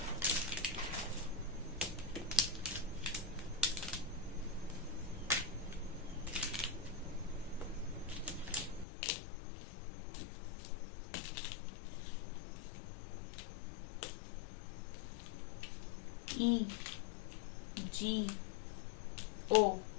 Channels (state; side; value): drops out; right; at 8.8 s